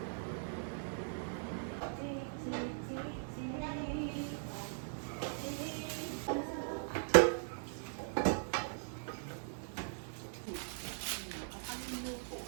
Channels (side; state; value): left; silent; digital silence